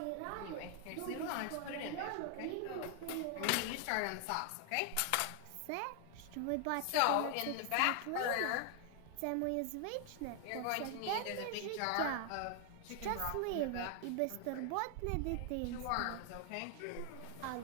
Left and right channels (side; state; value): both; different; correlation 0.00